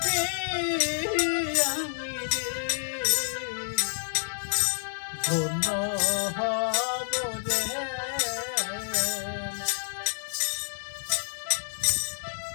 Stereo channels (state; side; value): silent; right; 59 dB below the other